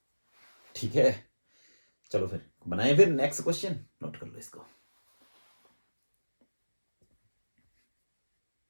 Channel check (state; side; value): inverted; both; correlation -1.00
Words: ठीक है, चलो फिर बनाए फिर नेक्स्ट क्वेश्चन, नोट कर लो इसको।